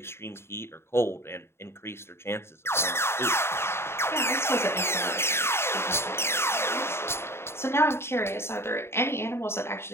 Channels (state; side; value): late; right; 0.12 ms